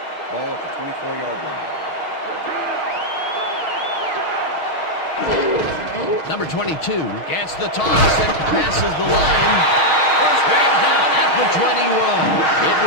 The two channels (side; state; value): right; late; 6.4 ms